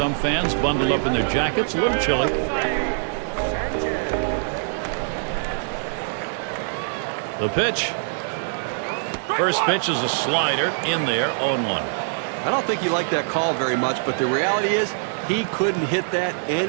fans bundled up in their jackets, a little chilly. The pitch. First pitch is a slider in there, 0-1. I don't think he liked that call very much, but the reality is he couldn't hit that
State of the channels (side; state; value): left; silent; digital silence